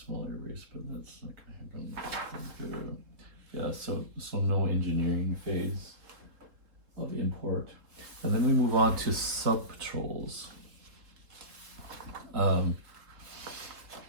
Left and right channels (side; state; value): left; late; 3.7 ms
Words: small air base, but that's not going to happen. Yeah, so no engineering phase of import. And then we move on to sub-patrols. And